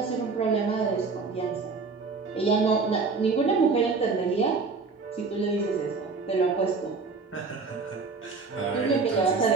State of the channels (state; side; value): quieter; left; 4.4 dB